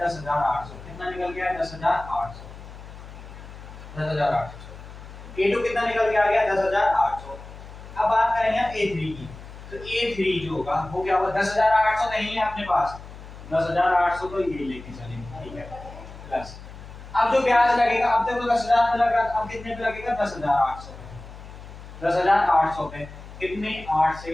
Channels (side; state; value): left; noise; hum, 15 dB below the sound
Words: 10,800, कितना निकल गया है 10,800, 10,800। A2 कितना निकल के आ गया 10,800। अब बात करेंगे हम A3 की, तो A3 जो होगा वो क्या होगा, 10,800 नहीं है अपने पास, 10,800 तो ये लेके चलेंगे, ठीक है, प्लस अब जो ब्याज लगेगा, अब देखो 10,000 पे लगा, अब कितने पे लगेगा 10,800 पे, 10,800 पे कितने 8 से